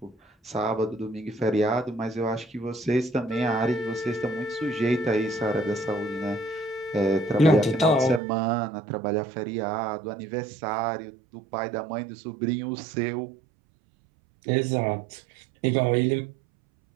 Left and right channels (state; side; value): drops out; left; at 8.2 s